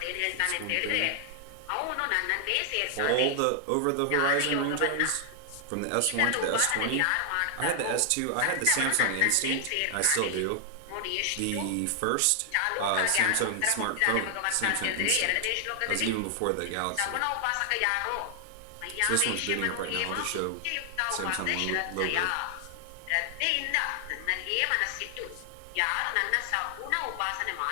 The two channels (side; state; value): both; different; correlation 0.00